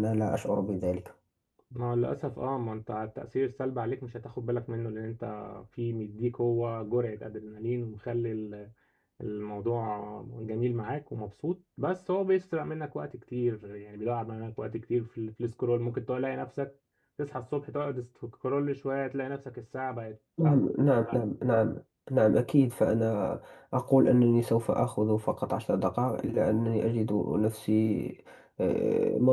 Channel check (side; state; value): both; identical; correlation 1.00